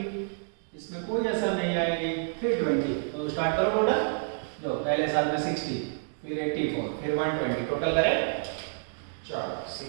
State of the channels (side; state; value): left; silent; digital silence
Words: इसमें कोई असर नहीं आएगी 320। तो स्टार्ट करो टोटल, जो पहले साल में 60 फिर 84 फिर 120 टोटल करें। चलो